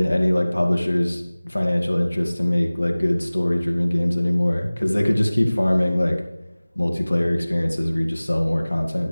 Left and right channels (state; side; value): inverted; both; correlation -0.99